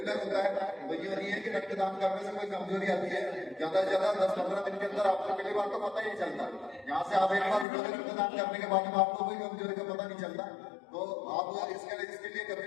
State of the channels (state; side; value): drops out; right; at 7.7 s